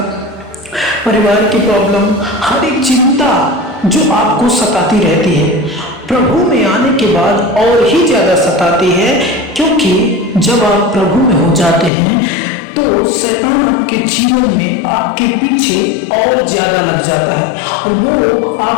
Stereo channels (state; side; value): drops out; right; at 11.9 s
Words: परिवार की प्रॉब्लम, हर एक चिंता जो आपको सताती रहती है, प्रभु में आने के बाद और ही ज्यादा सताती है। क्योंकि जब आप प्रभु में हो जाते हैं तो शैतान आपके जीवन में आपके पीछे और ज्यादा लग जाता है और वो